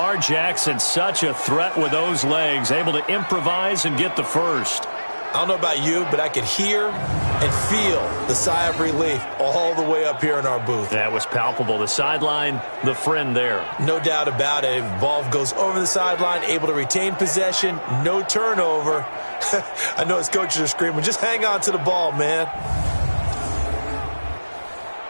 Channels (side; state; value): both; inverted; correlation -1.00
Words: Jackson, such a threat with those legs, able to improvise and get the first. I don't know about you, but I could hear and feel the sigh of relief all the way up here in our booth. That was palpable. The sideline, the friend there. No doubt about it. Ball goes over the sideline, able to retain possession, no turnover. I know his coaches are screaming, just hang on to the ball, man.